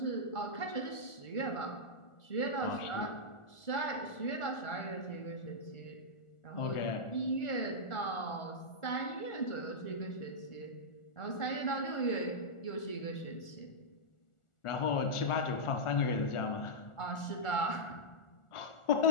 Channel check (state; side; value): late; right; 1.4 ms